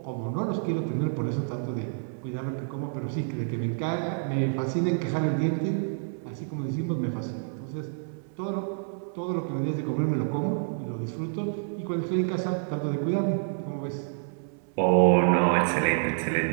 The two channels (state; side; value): silent; left; 59 dB below the other